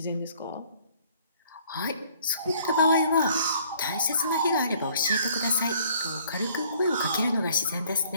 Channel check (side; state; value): both; inverted; correlation -0.59